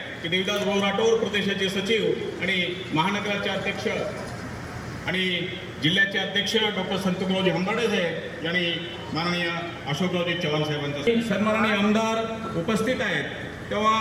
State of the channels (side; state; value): both; identical; correlation 1.00